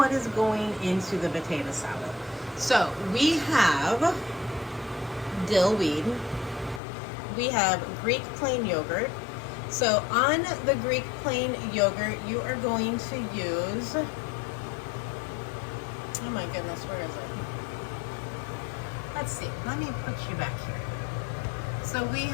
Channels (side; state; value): right; drops out; at 6.8 s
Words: is going into the potato salad. So we have dill weed, we have Greek plain yogurt. So on the Greek plain yogurt, you are going to use, oh my goodness, where is it? Let's see, let me put you back here. So we